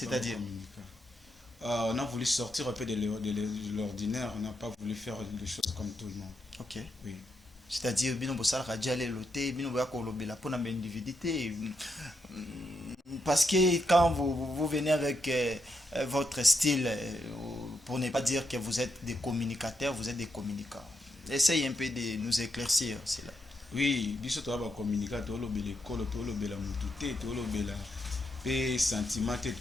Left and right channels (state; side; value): normal; both; correlation 0.82